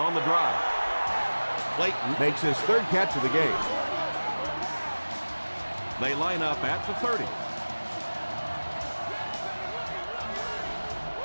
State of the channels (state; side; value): inverted; both; correlation -1.00